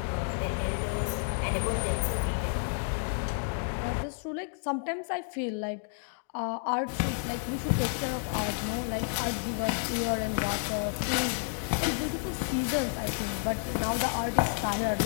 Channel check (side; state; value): right; silent; digital silence